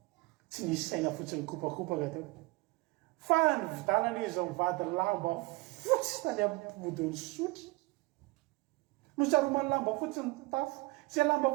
tsy nisy saina fotsiny mikopakopaka teo fa ny vidanana izy mivady lamba fotsy tany ampodiny sotry nosaromany lamba fotsy ny tafo zay lamba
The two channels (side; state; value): left; quieter; 24.3 dB